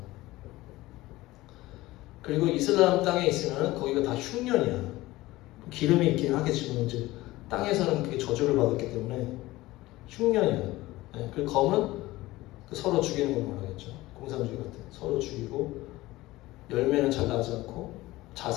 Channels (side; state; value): right; quieter; 18.4 dB